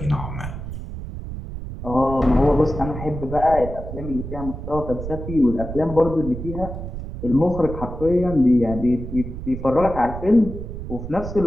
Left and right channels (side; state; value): right; noise; rumble, 8 dB below the sound